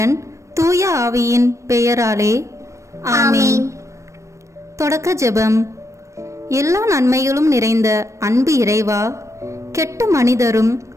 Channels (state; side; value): late; left; 0.15 ms